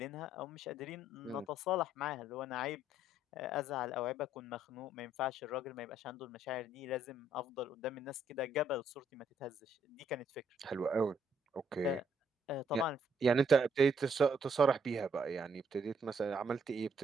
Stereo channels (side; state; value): both; normal; correlation 0.70